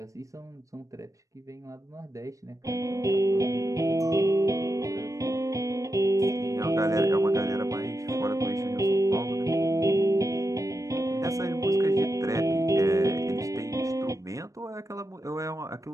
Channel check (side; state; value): left; late; 0.16 ms